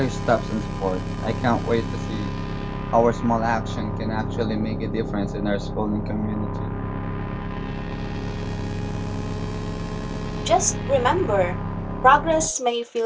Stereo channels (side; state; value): both; identical; correlation 1.00